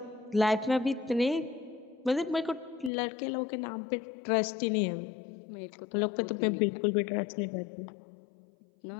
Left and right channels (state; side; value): drops out; right; at 2.9 s